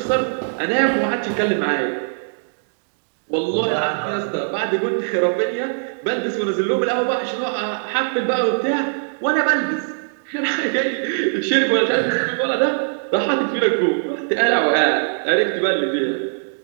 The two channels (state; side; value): silent; left; digital silence